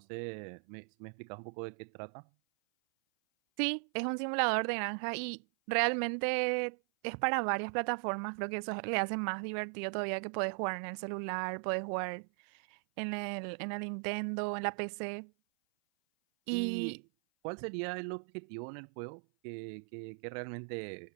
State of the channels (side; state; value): left; silent; 53 dB below the other